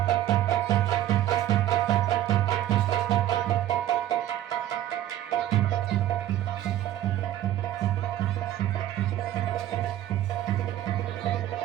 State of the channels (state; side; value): quieter; left; 12.9 dB